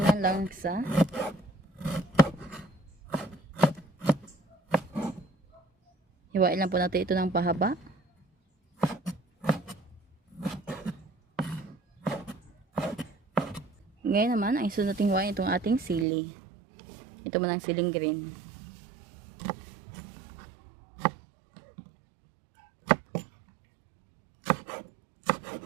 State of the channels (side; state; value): left; drops out; at 16.1 s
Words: ng langsa. Hiwain lang po natin ito ng pahaba. Ngayon naman, ang isunod natin hiwain itong ating sili. Ito man ang siling green.